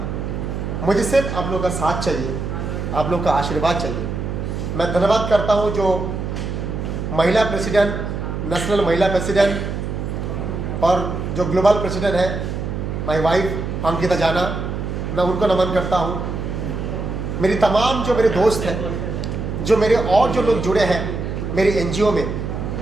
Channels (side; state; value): right; noise; hum, 4 dB below the sound